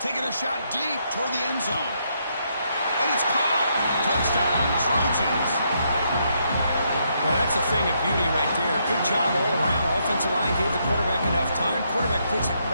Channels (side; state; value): both; inverted; correlation -0.76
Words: Taking a shot deep toward the end zone. And it's caught. Touchdown, Trojans. Well, that's a thing of beauty right there. Good job all around. Offensive line gave the quarterback enough time. Quarterback puts it